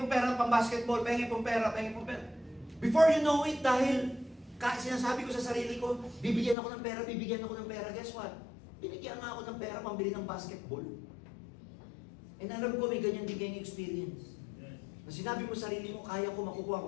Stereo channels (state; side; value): drops out; right; at 6.6 s